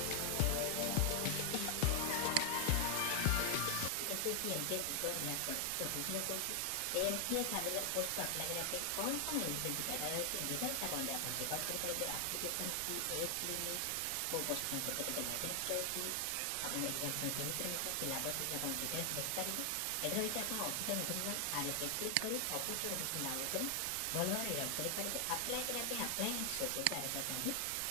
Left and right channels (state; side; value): different; both; correlation 0.00